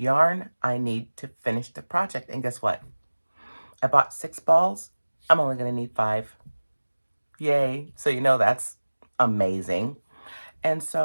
I need to finish the project. And guess what? I bought 6 balls. I'm only going to need 5. Yay. So you know that's amazing. And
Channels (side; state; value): both; inverted; correlation -1.00